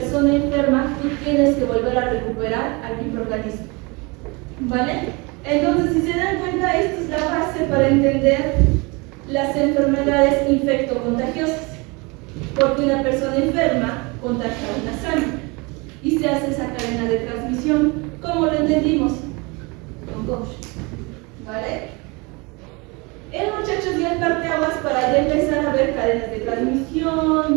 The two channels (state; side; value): quieter; left; 27.5 dB